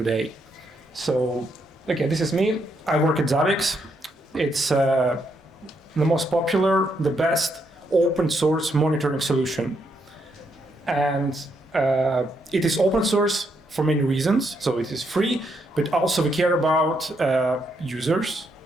So, okay, this is me. I work at Zabbix. It's the most popular, the best open source monitoring solution. And it is open source for many reasons. So it is free, but also we care about users,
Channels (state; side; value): normal; both; correlation 0.77